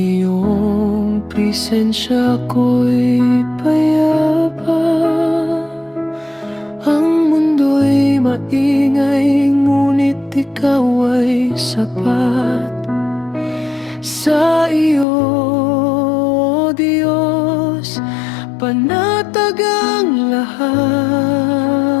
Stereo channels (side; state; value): right; drops out; at 15.1 s